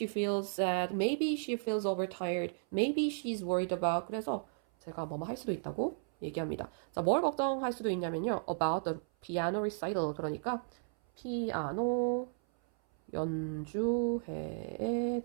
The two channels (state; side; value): silent; left; 55 dB below the other